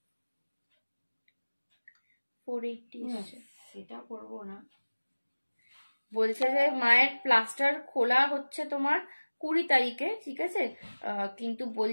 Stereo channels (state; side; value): inverted; both; correlation -1.00